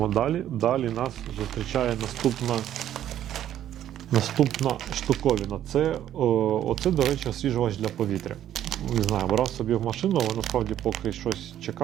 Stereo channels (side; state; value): left; quieter; 11.4 dB